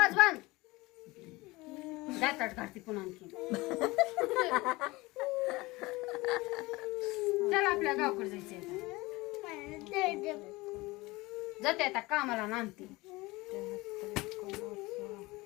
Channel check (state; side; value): quieter; right; 21.8 dB